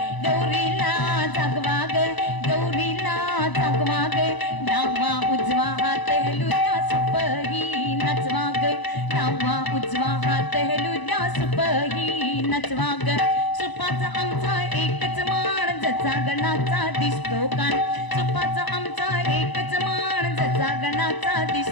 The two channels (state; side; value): late; right; 1.0 ms